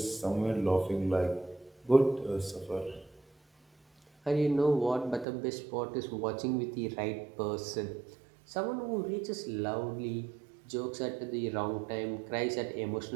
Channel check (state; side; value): drops out; left; at 5.2 s